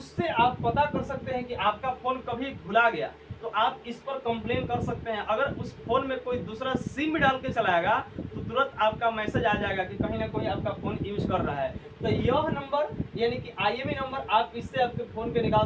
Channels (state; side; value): identical; both; correlation 1.00